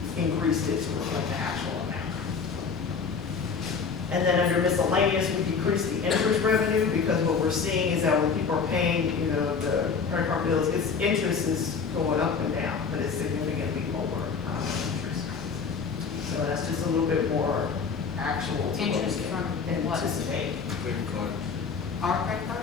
increased it to reflect the actual amount. And then under miscellaneous, we decreased the interest revenue because what we're seeing is that when people are paying, the credit card bills, its interest is going up and down, but it's significantly lower interest. So that's just a little bit more actual to what Interest we from what? anticipate. Our credit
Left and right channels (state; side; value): quieter; right; 5.5 dB